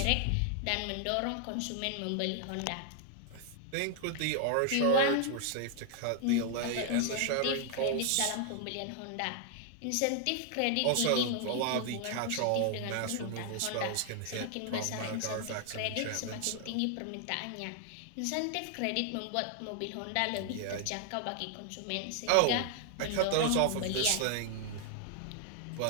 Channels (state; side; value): different; both; correlation 0.00